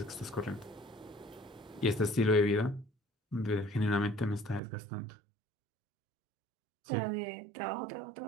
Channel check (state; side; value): drops out; left; at 4.6 s